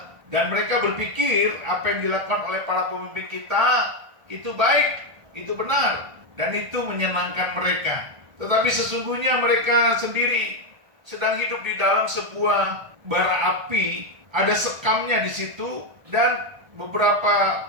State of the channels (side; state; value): left; late; 1.6 ms